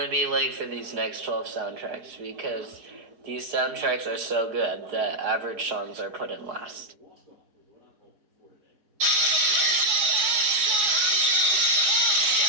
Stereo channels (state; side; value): late; left; 4.8 ms